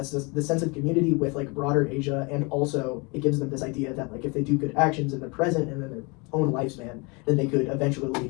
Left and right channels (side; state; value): right; quieter; 29.5 dB